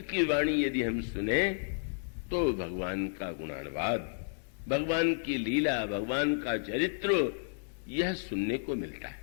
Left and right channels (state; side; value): silent; right; digital silence